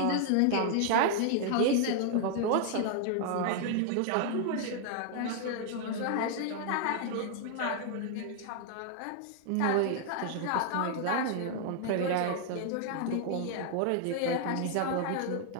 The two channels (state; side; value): different; both; correlation 0.00